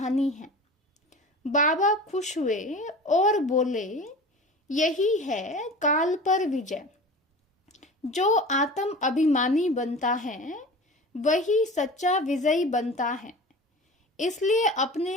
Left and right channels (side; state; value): both; normal; correlation 0.36